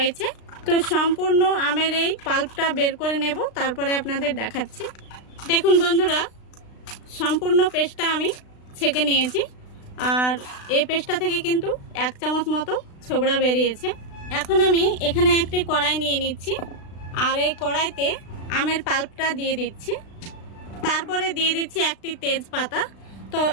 তো সম্পূর্ণ আমের এই পাল্পটা বের করে নেব, তারপরে আপনাদের দেখাচ্ছি। দেখুন বন্ধুরা, সম্পূর্ণ পেস্টটা আমি ছেঁকে নিয়েছি। আর এই পেস্টটা থেকে কিন্তু 1 চামচ মতো ছোবড়া বেরিয়েছে। এখন আমি এখানে একটি কড়াই নিয়ে নিচ্ছি। আর এই কড়াইতে আমের পাল্পটা দিয়ে দিচ্ছি। তারপরে দিয়ে দিচ্ছি একটি তেজপাতা। তো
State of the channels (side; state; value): right; late; 36 ms